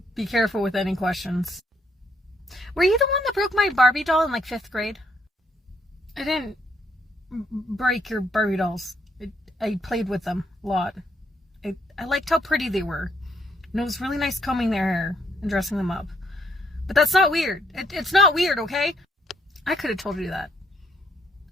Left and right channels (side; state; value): both; normal; correlation 0.71